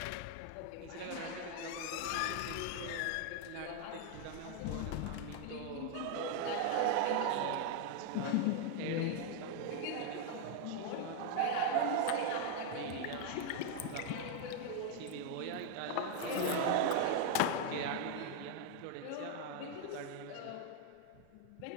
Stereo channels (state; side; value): different; both; correlation 0.00